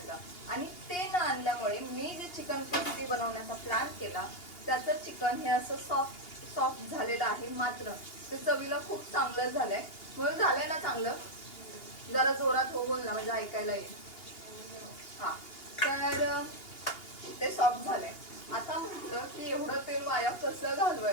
आणि ते न आणल्यामुळे मी जे चिकन क्रिस्पी बनवण्याचा प्लॅन केला त्याचं चिकन हे असं सॉफ्ट झालेलं आहे. मात्र ते चवीला खूप चांगलं झालंय. म्हणून झालंय ना चांगलं, जरा जोरात हो बोल ना म्हणजे ऐकायला येईल. हा, तर ते सॉफ्ट झालंय. आता म्हटलं की एवढं तेल वाया कसं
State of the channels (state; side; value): late; right; 2.8 ms